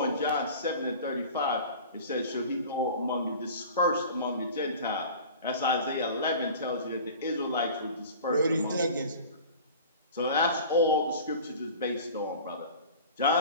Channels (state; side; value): inverted; both; correlation -0.40